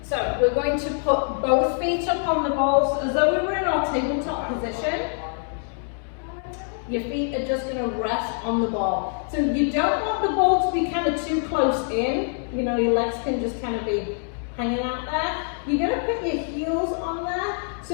So we're going to put both feet up on the balls as though we were in our tabletop position. Your feet are just going to rest on the ball. So you don't want the ball to be kind of too close in. You know, your legs can just kind of be hanging out there. You're going to put your heels on there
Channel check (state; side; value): silent; right; 56 dB below the other